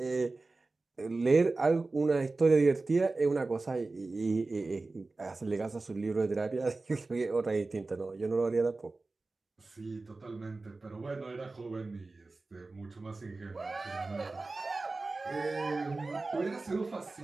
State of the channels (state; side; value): quieter; left; 3.5 dB